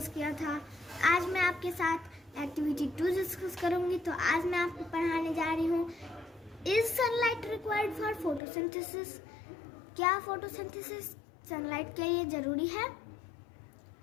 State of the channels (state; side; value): drops out; right; at 8.4 s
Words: किया था। आज मैं आपके साथ एक्टिविटी 2 डिस्कस करूँगी। तो आज मैं आपको पढ़ाने जा रही हूँ, is sunlight required for photosynthesis? क्या फोटोसिंथेसिस सनलाइट के लिए जरूरी है?